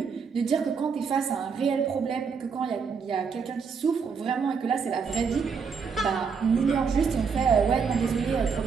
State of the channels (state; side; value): quieter; left; 5.8 dB